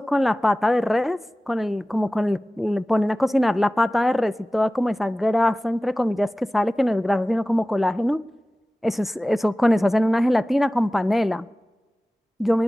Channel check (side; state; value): both; normal; correlation 0.97